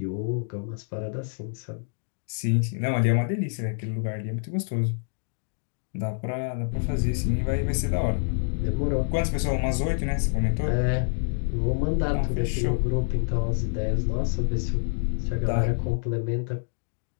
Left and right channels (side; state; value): right; silent; digital silence